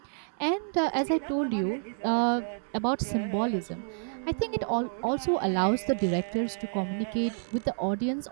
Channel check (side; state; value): left; silent; 58 dB below the other